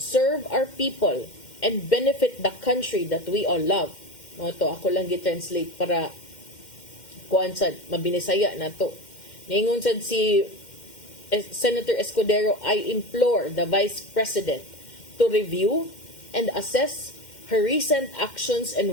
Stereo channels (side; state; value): right; late; 2.1 ms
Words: our people and benefit the country that we all love? Mo to ako lang gi-translate para kuan sad mabinisaya nato. Ningon sad si Senator Escudero, I implore the Vice President to review and assess her recent actions